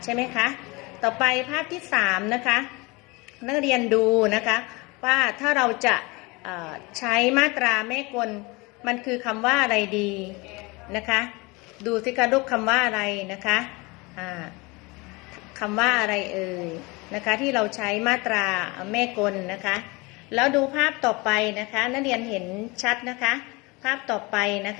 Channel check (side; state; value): right; quieter; 25.4 dB